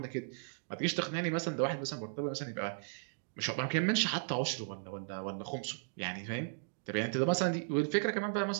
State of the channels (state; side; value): silent; left; digital silence